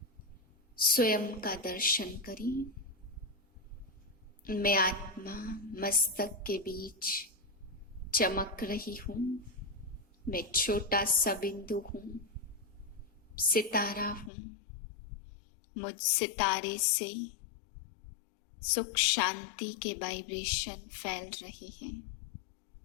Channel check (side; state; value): right; drops out; at 14.3 s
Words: स्वयं का दर्शन करें। मैं आत्मा मस्तक के बीच चमक रही हूँ। मैं छोटा सा बिंदु हूँ, सितारा हूँ। मुझ सितारे से सुख शांति के वाइब्रेशन फैल रहे हैं।